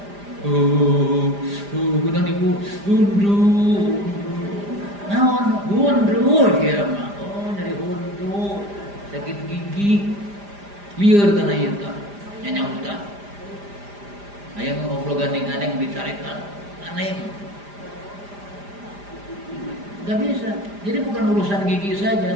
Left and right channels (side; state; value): left; late; 5.0 ms